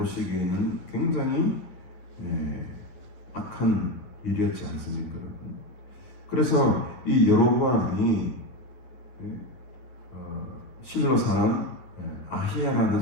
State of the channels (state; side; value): late; right; 10 ms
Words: 굉장히 악한 일이었지 않습니까? 그래서 이 여로보암이 실로 사람 아히야라는